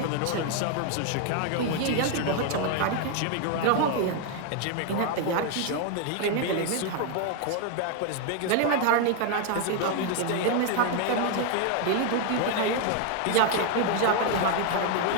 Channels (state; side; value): different; both; correlation 0.01